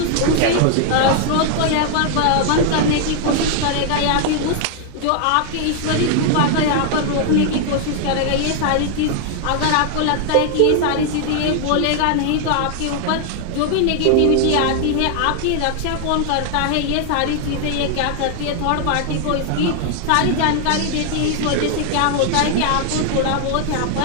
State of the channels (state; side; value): different; both; correlation 0.00